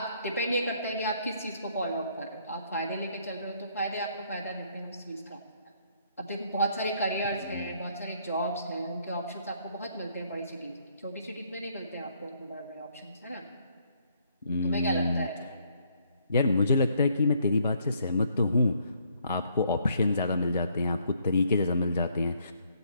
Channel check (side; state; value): both; inverted; correlation -0.68